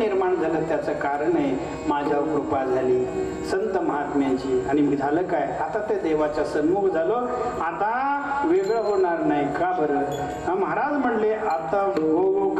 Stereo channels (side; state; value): both; identical; correlation 1.00